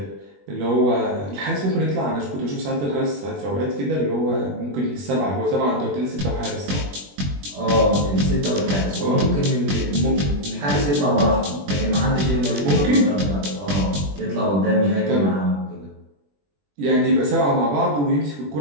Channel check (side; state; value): left; late; 21 ms